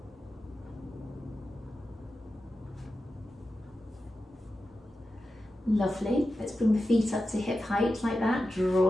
Lovely. Let's bring the feet up to hip height like that,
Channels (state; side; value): normal; both; correlation 0.92